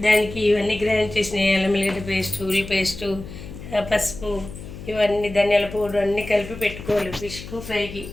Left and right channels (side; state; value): left; noise; hum, 12 dB below the sound